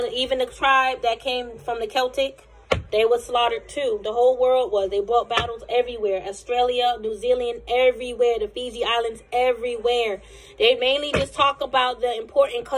to, even the tribe that came from the Celtic, they were slaughtered too. The whole world was. They brought battles everywhere. Australia, New Zealand, everywhere. The Fiji Islands, everywhere. They mainly just talk about the important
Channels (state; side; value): identical; both; correlation 1.00